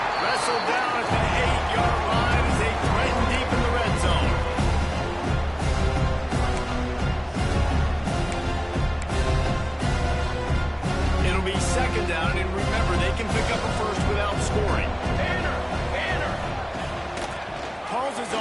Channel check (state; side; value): identical; both; correlation 1.00